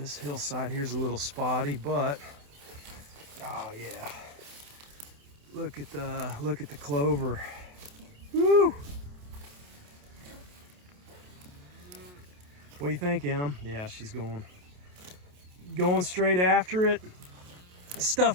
hillside here's a little spotty, but oh yeah, look at the clover. Woo! What do you think, Em? Yeah, she's going straight after it. This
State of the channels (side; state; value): left; late; 28 ms